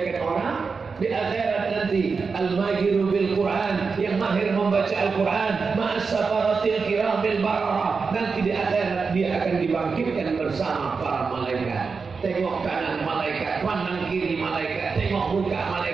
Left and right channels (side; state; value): left; quieter; 5.0 dB